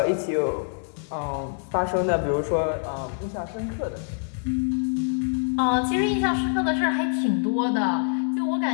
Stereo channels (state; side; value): silent; right; 60 dB below the other